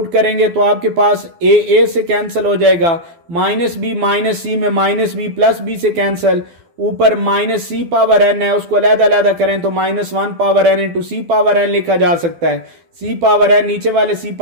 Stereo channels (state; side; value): late; left; 12 ms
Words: करेंगे तो आपके पास a से कैंसिल हो जाएगा, माइनस बी माइनस सी में माइनस बी प्लस बी से कैंसिल, ऊपर माइनस सी पावर एन है उसको अलग-अलग करें तो माइनस 1 पावर एन इंटू सी पावर एन लिखा जा सकता है। सी पावर एन नीचे वाले सी